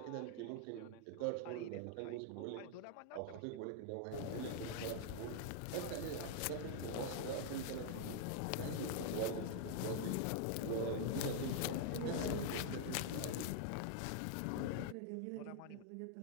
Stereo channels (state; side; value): different; both; correlation 0.00